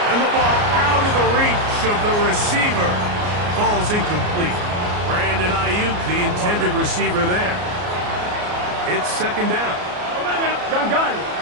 And the ball out of the reach of the receiver. Ball's incomplete. Brandon Ayuk, the intended receiver there. It's second down. Gun.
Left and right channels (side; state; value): left; late; 34 ms